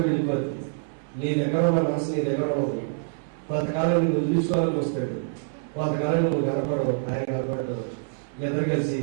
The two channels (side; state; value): left; silent; 61 dB below the other